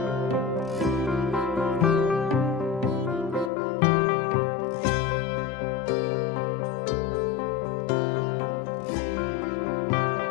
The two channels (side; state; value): right; drops out; at 3.5 s